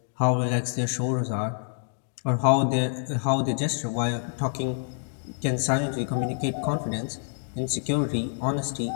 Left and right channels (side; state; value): right; silent; digital silence